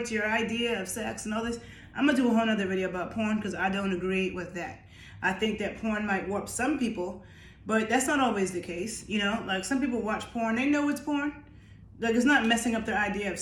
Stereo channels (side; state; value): both; identical; correlation 1.00